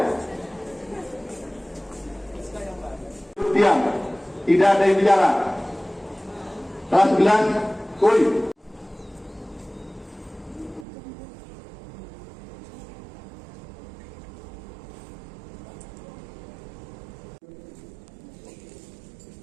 Diam, tidak ada yang bicara. Kelas 11, kuy.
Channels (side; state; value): left; drops out; at 10.9 s